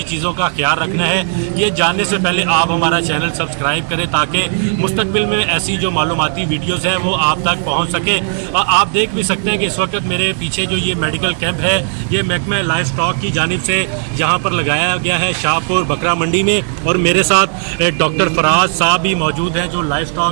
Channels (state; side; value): silent; left; digital silence